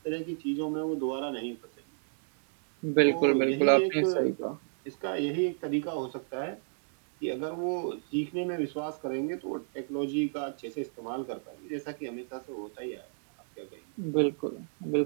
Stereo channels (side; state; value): left; silent; 57 dB below the other